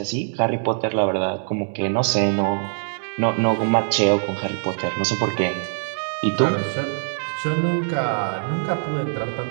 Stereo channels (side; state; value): left; silent; digital silence